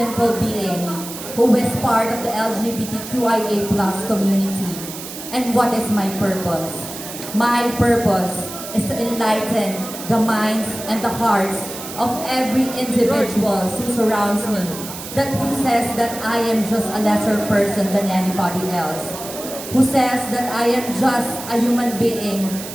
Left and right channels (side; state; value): right; noise; hiss, 11 dB below the sound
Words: being who is part of the LGBTQIA+ community. And what is my purpose? My purpose is to enlighten the minds and the hearts of every individual who surrounds me, that who says that I am just a lesser person than anybody else, who says that I am just a human being